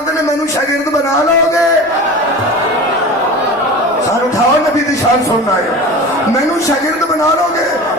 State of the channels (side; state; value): left; noise; rumble, 30 dB below the sound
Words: نے مینوں شاگرد بنا لو گے۔ سر اٹھاؤ نبی دی شان سننا ہے، مینوں شاگرد بنا لو گے،